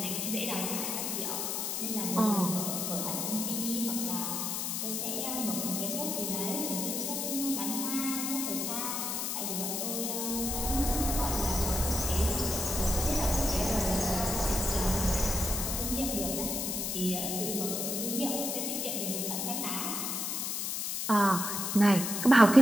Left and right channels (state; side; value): noise; left; hiss, 1 dB below the sound